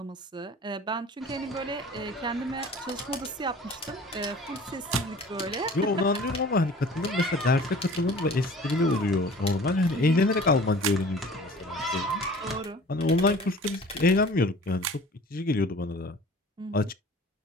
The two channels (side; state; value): both; normal; correlation 0.46